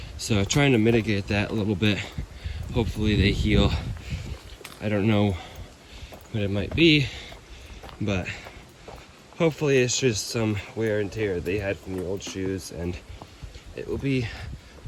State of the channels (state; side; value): identical; both; correlation 1.00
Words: So I'm trying to mitigate that a little bit. Hopefully they heal. I don't know what it might be, but hopefully it's just some wear and tear they had from the old shoes, and it will be